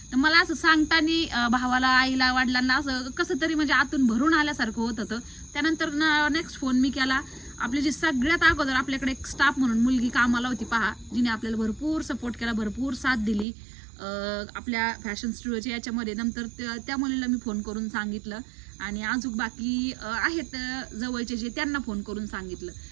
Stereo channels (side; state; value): left; drops out; at 13.5 s